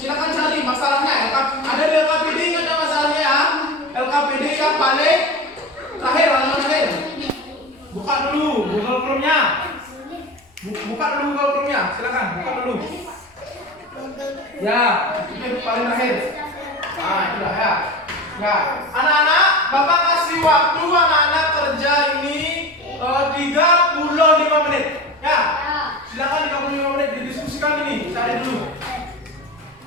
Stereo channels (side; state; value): both; normal; correlation 0.30